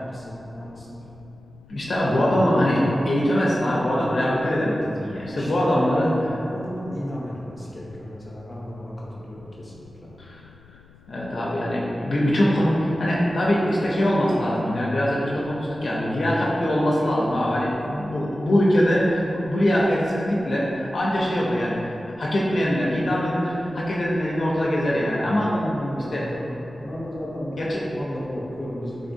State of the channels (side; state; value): left; noise; rumble, 25 dB below the sound